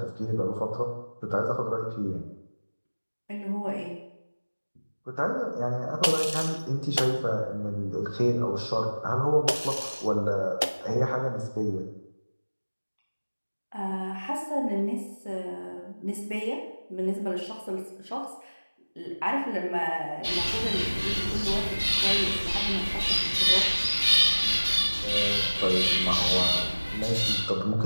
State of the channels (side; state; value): both; inverted; correlation -1.00